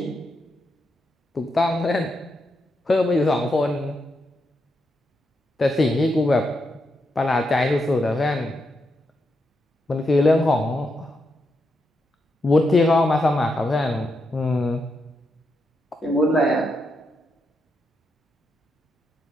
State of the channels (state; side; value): normal; both; correlation 0.83